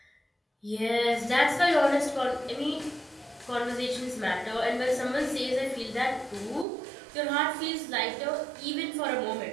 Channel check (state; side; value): drops out; left; at 6.7 s